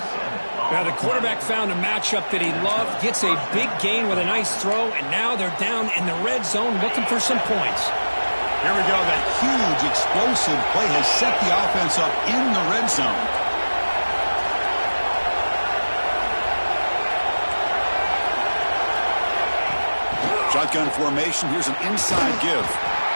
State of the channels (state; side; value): inverted; both; correlation -1.00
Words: Now the quarterback found a matchup that he loved, gets a big gain with a nice throw, and now they're down in the red zone looking for some points. Here we go. That huge explosive play has set the offense up in the red zone. Shotgun formation. Here's an inside give.